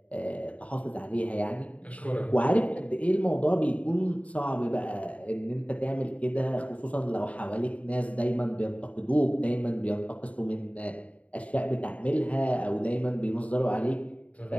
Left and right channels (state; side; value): late; right; 0.067 ms